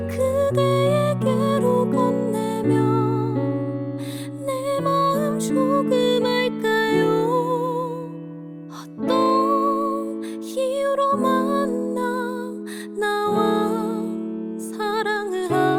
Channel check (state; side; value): identical; both; correlation 1.00